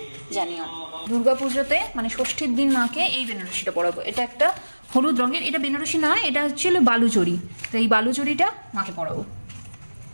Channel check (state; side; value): inverted; both; correlation -1.00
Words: জানিও। দুর্গা পুজোতে মানে ষষ্ঠীর দিন মাকে এই বেনারসিটা পরাবো। এটা একটা হলুদ রঙের, এটা বেনারসি না, এটা হচ্ছে বালুচরি। তো এই বালুচরিটা মাকে পরাবো।